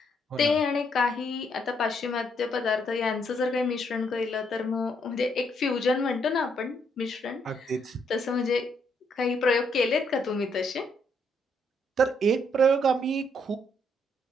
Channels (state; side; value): normal; both; correlation 0.73